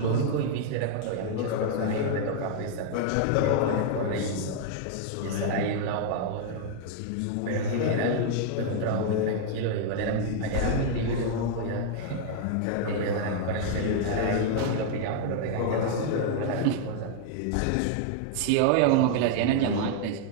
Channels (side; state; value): both; different; correlation -0.01